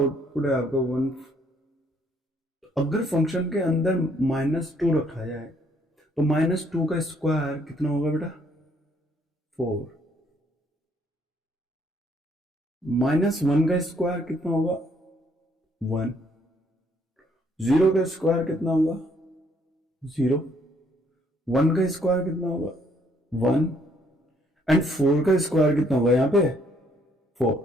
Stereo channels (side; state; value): both; normal; correlation 0.67